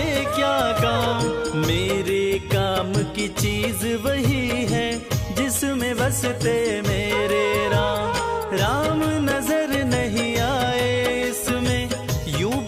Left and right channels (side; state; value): both; identical; correlation 1.00